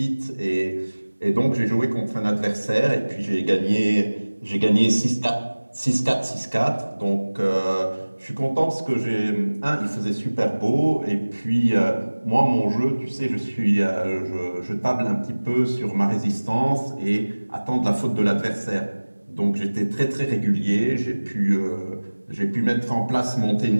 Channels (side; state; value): both; inverted; correlation -1.00